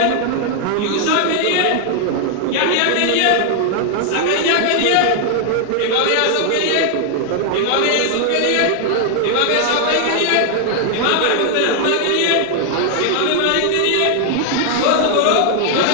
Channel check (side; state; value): both; different; correlation 0.00